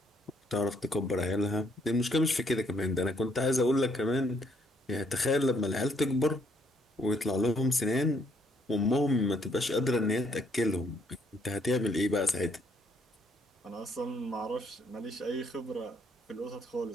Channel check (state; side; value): normal; both; correlation 0.69